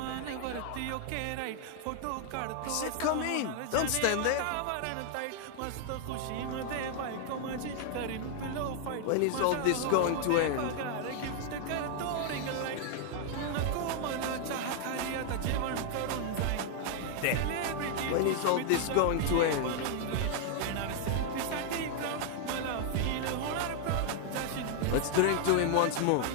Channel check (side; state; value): both; different; correlation 0.00